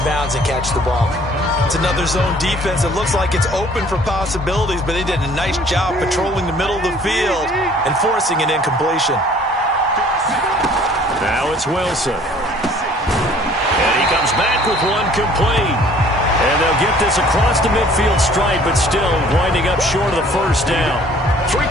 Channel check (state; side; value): normal; both; correlation 0.55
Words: bounds and catch the ball. It's another zone defense. It looks like it's open for possibilities, but they did a nice job patrolling the middle of the field and forcing an incompletion. Now it's Wilson. And he comes back with one complete. And they'll get this across the midfield stripe, but still winding up short of the first down. 3